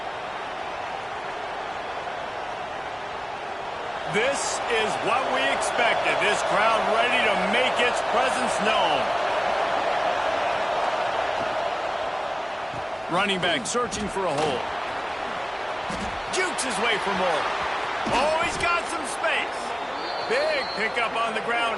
This is what we expected. This crowd ready to make its presence known. Running back searching for a hole. Jukes his way for more. Oh, he's got some space. Big pickup on the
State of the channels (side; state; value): both; identical; correlation 1.00